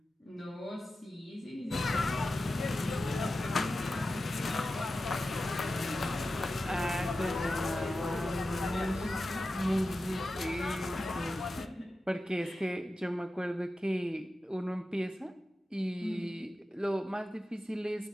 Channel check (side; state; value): both; normal; correlation 0.93